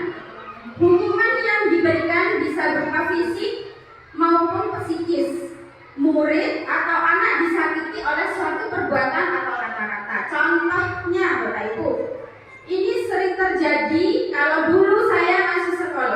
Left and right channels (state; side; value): identical; both; correlation 1.00